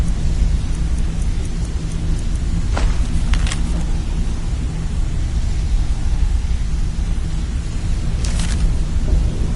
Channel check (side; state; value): both; identical; correlation 1.00